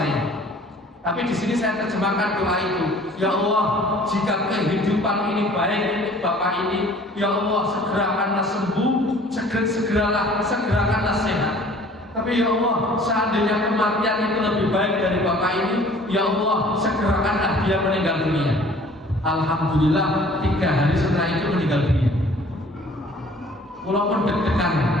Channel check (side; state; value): both; normal; correlation 0.51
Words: Tapi di sini saya terjemahkan doa itu, ya Allah, jika kehidupan ini baik untuk bapak ini, ya Allah segerakanlah sembuh, segerakanlah sehat. Tapi ya Allah, seandainya kematian itu lebih baik dari bapak ini, ya Allah segerakanlah dia meninggal dunia. Alhamdulillah 3 hari setelah itu meninggal dunia. Walaupun deg-degan,